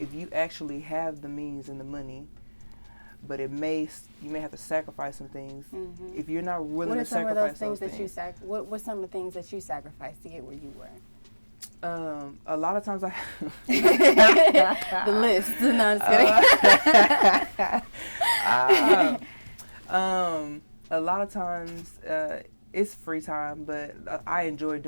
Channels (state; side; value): inverted; both; correlation -1.00